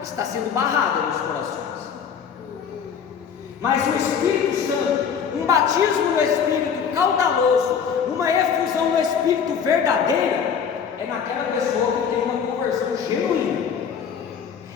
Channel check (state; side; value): quieter; right; 7.1 dB